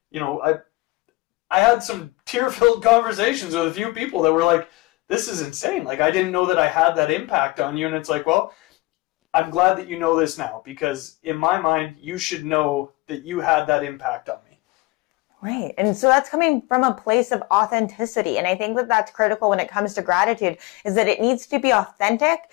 you know, I had some tear-filled conversations with a few people that were like, this is insane. Like, I didn't know that I had that impact on you. And it's like, well, I'm glad that you know this now, because in my mind, you should know that you had that impact on me. Right. And so that's coming from a place of authenticity. And I think that that's critical when it comes to gratitude, is that it needs to be authentic.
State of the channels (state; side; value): quieter; right; 21.9 dB